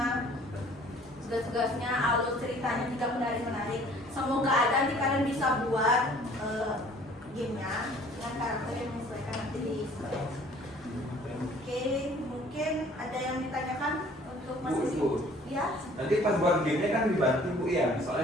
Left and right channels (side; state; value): both; normal; correlation 0.54